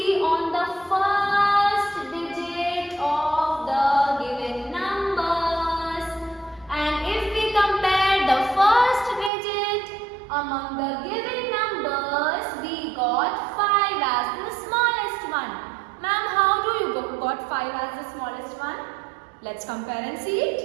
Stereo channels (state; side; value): drops out; left; at 9.3 s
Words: on the first digit of the given numbers. And if we compare the first digit among the given numbers, we got 5 as the smallest one. Ma'am, how do you got 5 as the smallest one? Let's compare and see